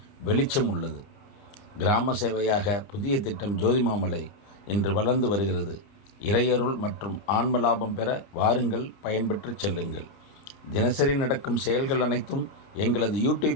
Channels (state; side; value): late; right; 29 ms